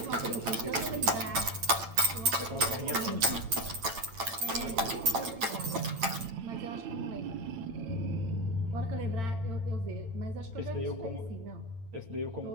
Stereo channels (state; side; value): late; left; 8.9 ms